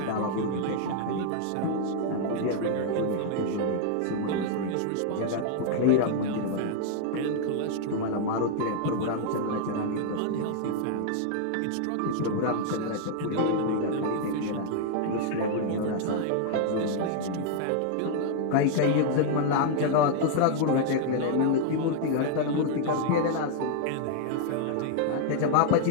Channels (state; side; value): different; both; correlation 0.00